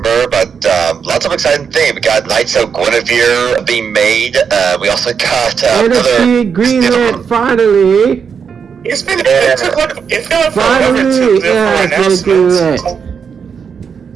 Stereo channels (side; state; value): left; quieter; 6.6 dB